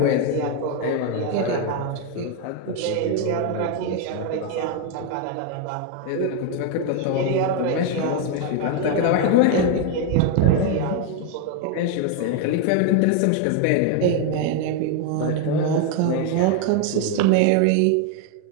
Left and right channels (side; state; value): both; different; correlation 0.01